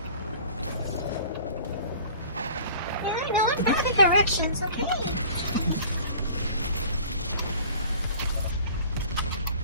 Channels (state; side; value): inverted; both; correlation -0.46